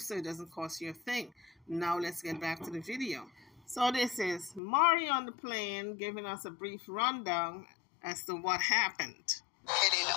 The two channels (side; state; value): right; drops out; at 4.6 s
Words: It doesn't cost you a thing. Now let's get back to the video. So this is Mari on the plane giving us a brief rundown as to what happened. Getting